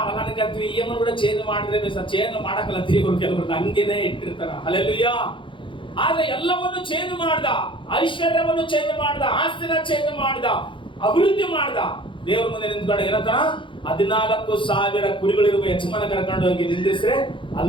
ನನಗಂತೀವಿ ಏನು ಕೂಡ ಚೇಂಜ್ ಮಾಡಿದ್ರೆ ಚೇಂಜ್ ಮಾಡಕ್ಕಲ್ಲತ್ತೀವಿ ಕೆಲವರು ಹಂಗೇನೆ ಇಟ್ಟಿರ್ತಾರ. ಹಲ್ಲೆಲೂಯಾ. ಆದ್ರೆ ಎಲ್ಲವನ್ನು ಚೇಂಜ್ ಮಾಡ್ದ, ಐಶ್ವರ್ಯವನ್ನು ಚೇಂಜ್ ಮಾಡ್ದ, ಆಸ್ತಿನ ಚೇಂಜ್ ಮಾಡ್ದ, ಅಭಿವೃದ್ಧಿ ಮಾಡ್ದ. ದೇವ್ರ ಮುಂದೆ ನಿಂತ್ಕೊಂಡು ಏನಂತ 14,000 ಕುರಿಗಳಿರುವ ಯಜಮಾನ ಕರ್ಕೊಂಡು ಹೋಗಿ ನಿಂದಿಸ್ರೆ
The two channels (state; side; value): late; right; 0.24 ms